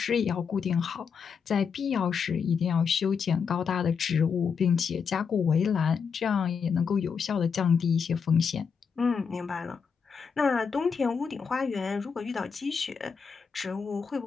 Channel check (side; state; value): right; quieter; 6.2 dB